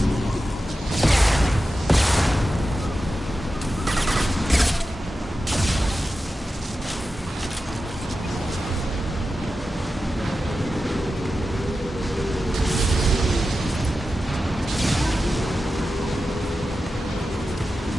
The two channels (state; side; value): normal; both; correlation 0.92